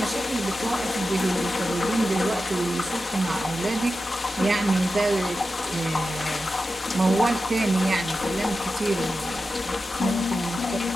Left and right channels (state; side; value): normal; both; correlation 0.92